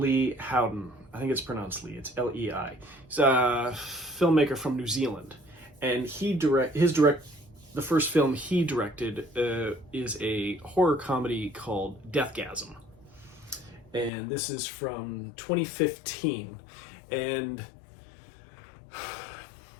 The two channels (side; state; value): right; drops out; at 14.1 s